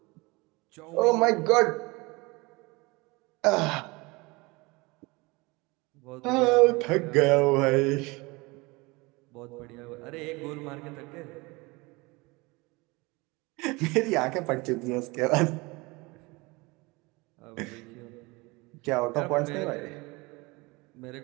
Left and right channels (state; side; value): quieter; left; 24.6 dB